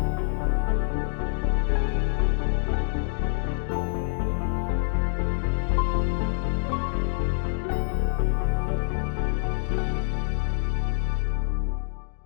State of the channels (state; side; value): silent; right; 60 dB below the other